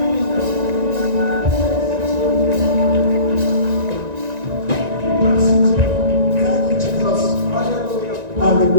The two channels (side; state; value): left; late; 1.9 ms